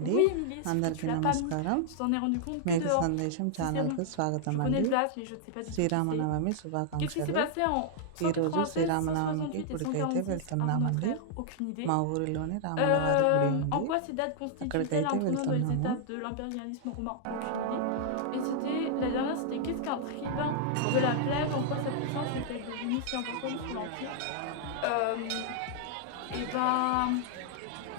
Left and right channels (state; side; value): different; both; correlation -0.01